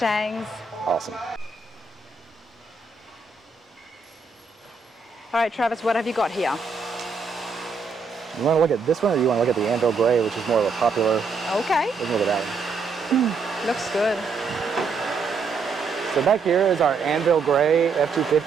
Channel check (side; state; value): left; quieter; 4.5 dB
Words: Awesome. All right, Travis, what have you got here? You want to look at this one, or you want to look at the Anvil Gray, which is more of a popular? Okay. Let's look at that one. Looks good. So back here is our Anvil Gray